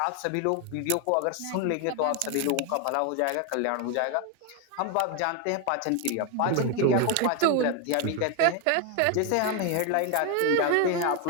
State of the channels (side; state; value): both; different; correlation 0.01